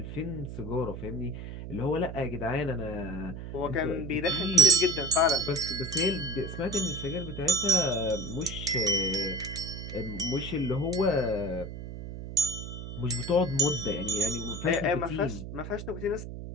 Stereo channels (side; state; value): right; noise; hum, 9 dB below the sound